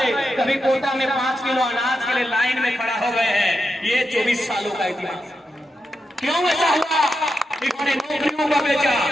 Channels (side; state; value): both; normal; correlation 0.87